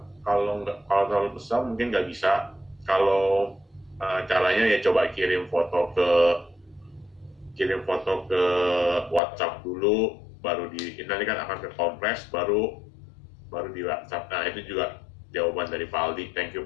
Kalau terlalu besar mungkin nggak bisa. Kalau caranya ya coba kirim foto ke WhatsApp dulu, baru nanti kan akan ke kompres, baru di WhatsApp. Nah itu juga jawaban dari Pak Aldi. Thank you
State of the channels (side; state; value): right; drops out; at 9.2 s